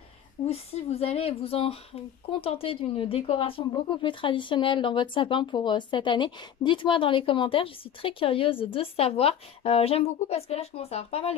ou si vous allez vous en contenter d'une décoration beaucoup plus traditionnelle dans votre sapin pour cette année. Dites-moi dans les commentaires, je suis très curieuse de savoir. J'aime beaucoup parce que là je commence à avoir pas mal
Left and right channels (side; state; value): right; quieter; 9.3 dB